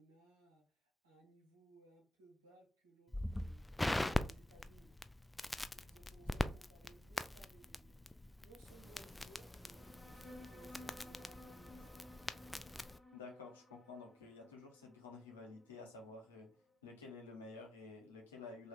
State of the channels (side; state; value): both; normal; correlation 0.94